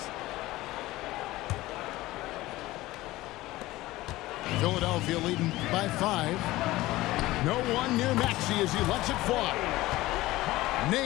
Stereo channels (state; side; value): quieter; right; 17.9 dB